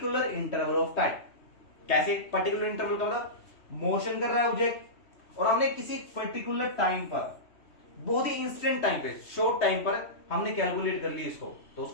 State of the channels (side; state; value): right; late; 3.1 ms